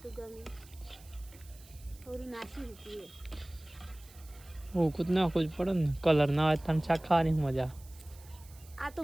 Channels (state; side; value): noise; right; hiss, 23 dB below the sound